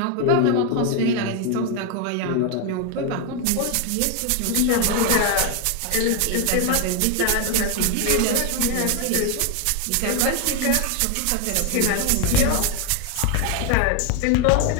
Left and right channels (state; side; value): different; both; correlation 0.01